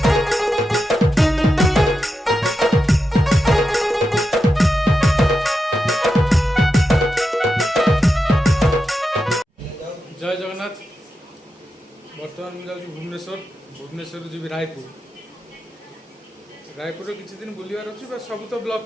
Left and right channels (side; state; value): both; normal; correlation 0.88